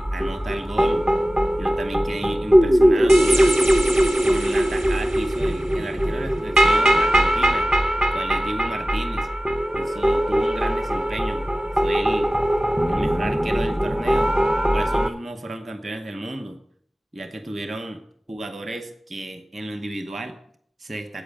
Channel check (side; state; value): both; normal; correlation 0.96